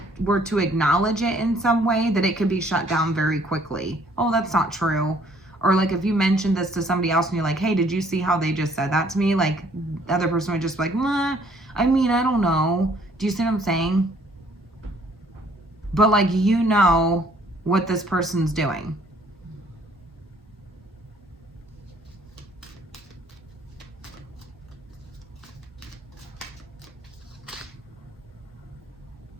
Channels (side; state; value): both; normal; correlation 0.61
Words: were to acknowledge it in some way, that it could be shut down very quickly. Oh, that's not true. Or like if you mentioned this to somebody else and you're like, hey, did you see how they just said that to me? Like the other person would just be like, I mean, I don't know. Do you see what I'm saying? But like, you know what this person's doing.